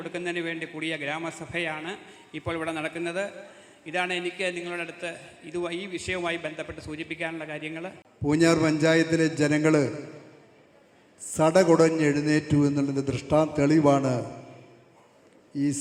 വേണ്ടി കൂടിയ ഗ്രാമസഭയാണ് ഇപ്പോൾ ഇവിടെ നടക്കുന്നത്. ഇതാണ് എനിക്ക് നിങ്ങളുടെ അടുത്ത് ഈ വിഷയവുമായി ബന്ധപ്പെട്ട് സൂചിപ്പിക്കാനുള്ള കാര്യങ്ങൾ. പൂഞ്ഞാർ പഞ്ചായത്തിലെ ജനങ്ങൾ സടകുടഞ്ഞെഴുന്നേറ്റു എന്നുള്ളതിൻ്റെ തെളിവാണ് ഈ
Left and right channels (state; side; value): identical; both; correlation 1.00